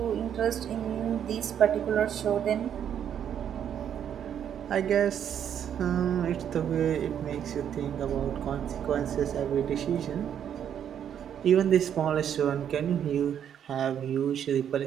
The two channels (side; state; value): left; quieter; 9.1 dB